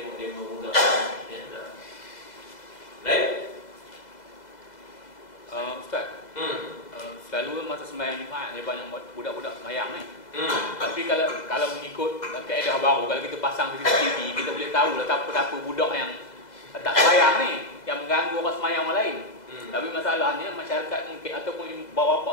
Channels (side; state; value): right; late; 2.0 ms